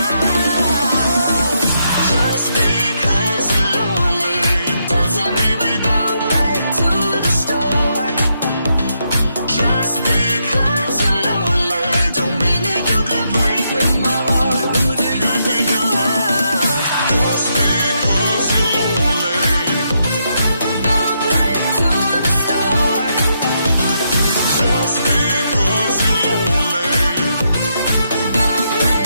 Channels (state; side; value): inverted; both; correlation -0.79